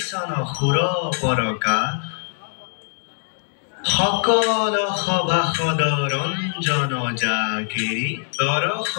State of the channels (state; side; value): silent; right; 64 dB below the other